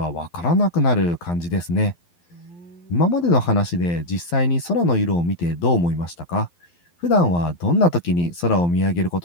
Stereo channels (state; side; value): late; right; 11 ms